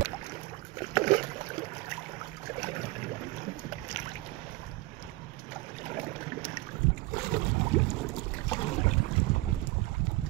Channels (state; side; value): quieter; left; 20.2 dB